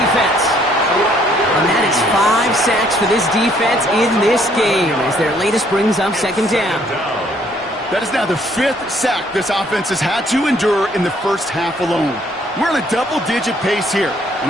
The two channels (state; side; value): normal; both; correlation 0.65